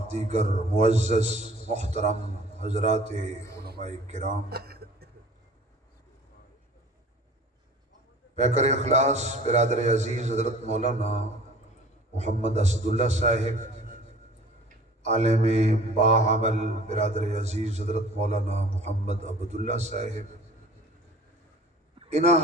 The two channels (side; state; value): both; normal; correlation 0.46